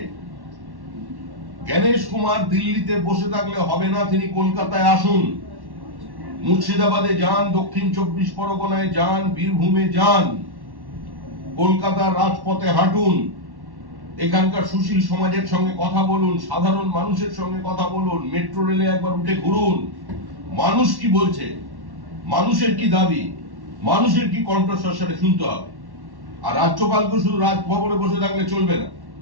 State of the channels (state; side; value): late; left; 1.1 ms